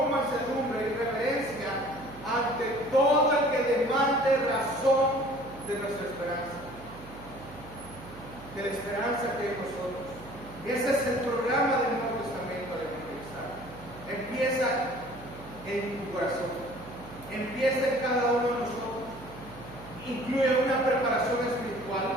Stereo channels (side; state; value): right; noise; hum, 17 dB below the sound